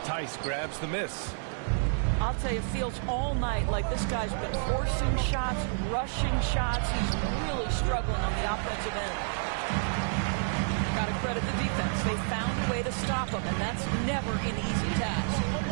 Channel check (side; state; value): left; silent; 55 dB below the other